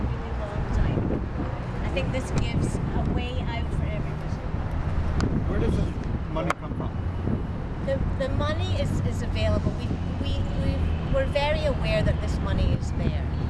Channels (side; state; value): both; identical; correlation 1.00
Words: really long time. I think this gives a way out for everybody. Where does the money come from? The money is available. We're very aware that this money is there.